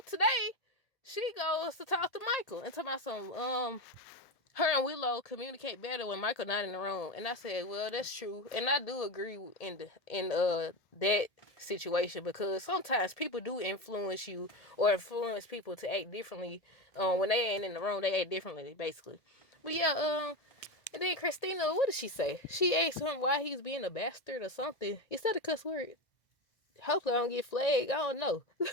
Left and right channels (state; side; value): late; right; 1.7 ms